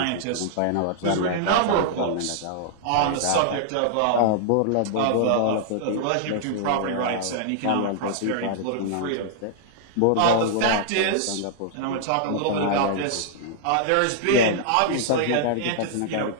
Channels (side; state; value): both; different; correlation -0.01